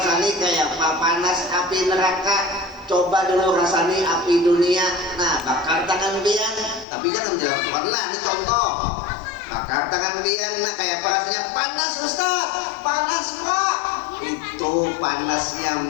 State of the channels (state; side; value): drops out; right; at 6.9 s